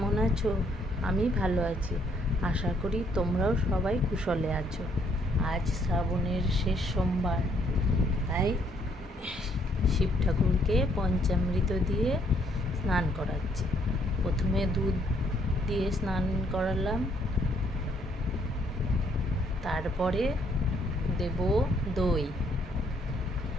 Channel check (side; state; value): both; normal; correlation 0.68